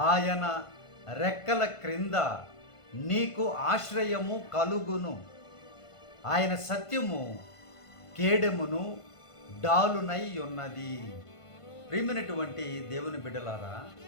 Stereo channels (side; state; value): right; late; 1.5 ms